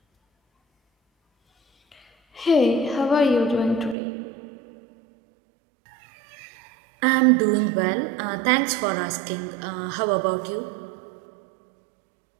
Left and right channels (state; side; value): drops out; left; at 4.0 s